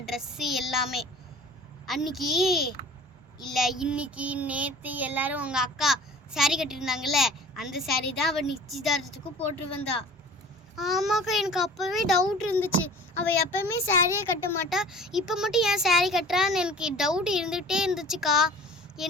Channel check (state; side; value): normal; both; correlation 0.43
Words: ட்ரெஸ்ஸு எல்லாமே. அன்னைக்கு இல்லை இன்னைக்கு நேற்று எல்லாரும் உங்கள் அக்கா சாரீ கட்டியிருந்தாங்கல்ல, அந்த சாரீ தான் அவள் நிச்சயதார்த்தத்துக்கு போட்டு வந்தா. ஆமாக்கா, எனக்கு அப்போவே டவுட் இருந்துச்சு. அவள் எப்போவுமே சாரியே கட்ட மாட்டா, இப்போ மட்டும் ஏன் சாரீ கட்டுறான்னு எனக்கு டவுட் இருந்துகிட்டே இருந்துச்சுக்கா.